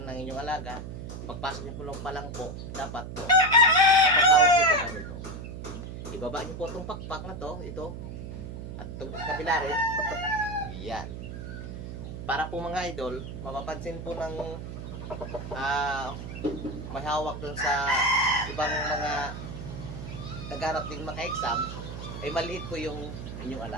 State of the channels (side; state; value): right; noise; hum, 8 dB below the sound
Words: ng inyong alaga, pagpasok niyo po lang po, dapat po, paghawak niyo po ganito. Ibaba niyo po itong pakpak na to, ito, at itong kabila rin, yan. Para po mga idol, mapapansin po ng may hawak dun sa ibang mga nagharap din maka-exam, ay maliit po yung inyong